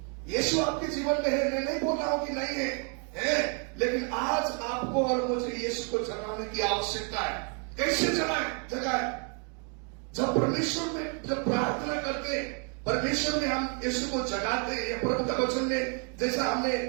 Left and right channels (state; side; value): quieter; left; 39.2 dB